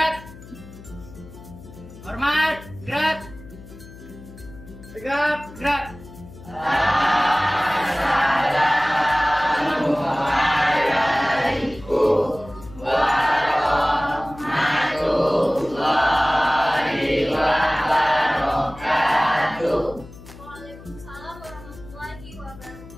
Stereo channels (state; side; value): noise; left; hum, 18 dB below the sound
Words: Hormat, gerak. Tegap, gerak. Waalaikumsalam warahmatullahi